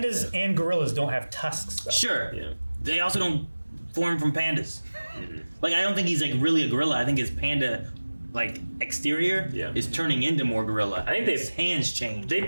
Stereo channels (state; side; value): inverted; both; correlation -1.00